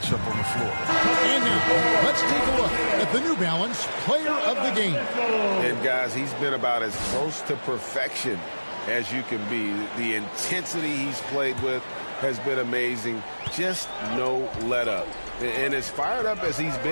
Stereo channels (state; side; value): inverted; both; correlation -1.00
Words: on the floor. And now, let's take a look at the New Balance Player of the Game. And guys, he's been about as close to perfection as you can be. The intensity he's played with has been amazing. Just no let up. And as fired up as he's